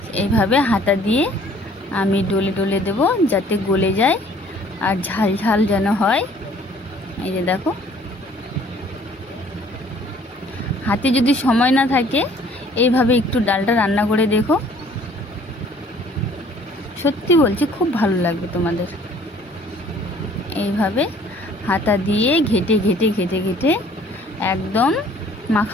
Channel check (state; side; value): normal; both; correlation 0.56